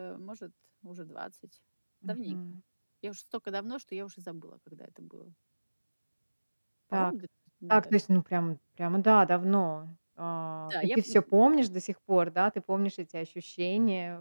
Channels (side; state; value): both; inverted; correlation -1.00